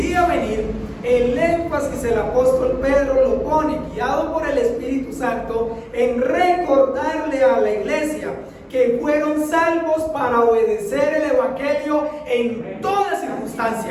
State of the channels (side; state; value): both; identical; correlation 1.00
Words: venir, el énfasis el apóstol Pedro lo pone, guiado por el Espíritu Santo, en recordarle a la iglesia que fueron salvos para obedecer el Evangelio en toda